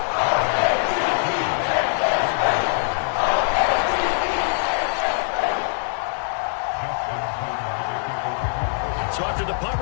So after the punt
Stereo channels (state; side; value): silent; right; 64 dB below the other